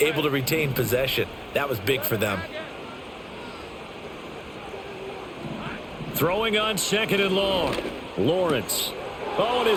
to retain possession. That was big for them. Throwing on 2nd and long. Lawrence. Oh, and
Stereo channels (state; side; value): identical; both; correlation 1.00